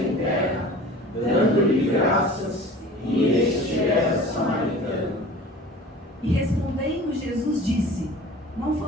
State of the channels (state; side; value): normal; both; correlation 0.42